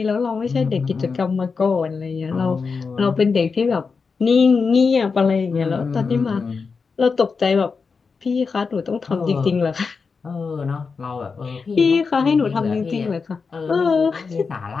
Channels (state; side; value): quieter; right; 5.0 dB